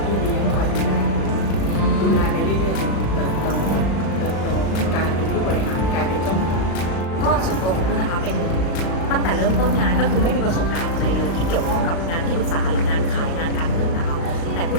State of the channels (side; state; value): right; late; 36 ms